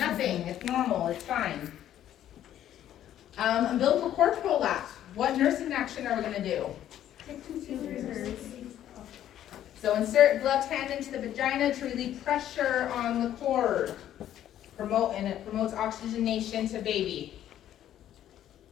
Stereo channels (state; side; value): quieter; right; 11.5 dB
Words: It's normal. It's fine. Umbilical cord prolapse. What nursing action are we going to do? So insert left hand into the vagina to relieve pressure on the cord. And it promotes oxygenation to baby.